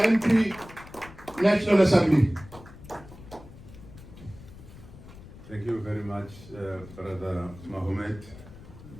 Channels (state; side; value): noise; left; rumble, 18 dB below the sound